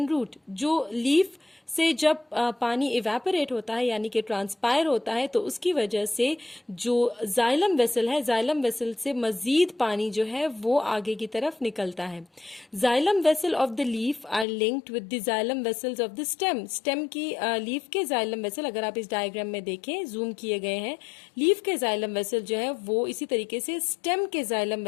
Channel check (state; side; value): drops out; right; at 14.5 s